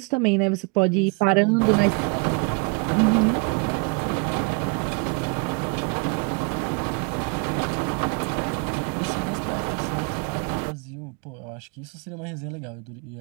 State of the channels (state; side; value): quieter; left; 33.1 dB